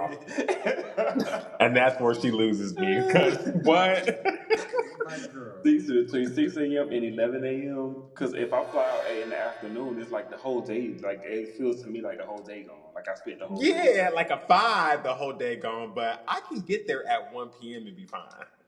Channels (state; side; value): identical; both; correlation 1.00